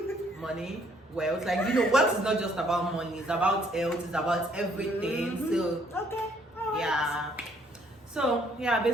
Money, wealth. Like, wealth is not just about money, it's about health, it's about everything. So, okay. All right. yeah. So, yeah,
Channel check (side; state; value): both; normal; correlation 0.65